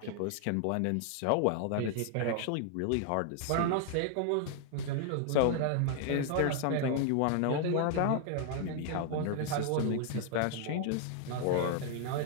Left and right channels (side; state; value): both; different; correlation 0.00